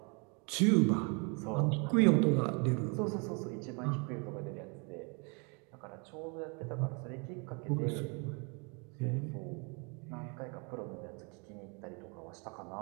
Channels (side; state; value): left; quieter; 33.7 dB